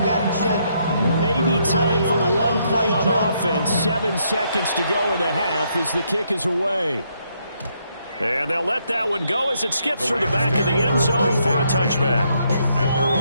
got to chill. Maybe time for one play on offense. 7 seconds to go in the half as the kick is away. And they'll let that one go as it skips through the back of the end zone for a touchback. At their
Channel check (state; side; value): inverted; both; correlation -0.74